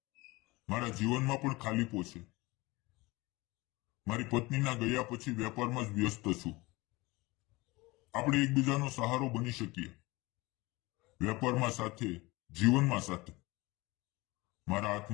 મારા જીવનમાં પણ ખાલીપો છે. મારી પત્નીના ગયા પછી વેપારમાં જ વ્યસ્ત છું. આપણે એકબીજાનો સહારો બની શકીએ, વેપારમાં સાથે, જીવનમાં સાથે. મારા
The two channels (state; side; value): quieter; right; 22.2 dB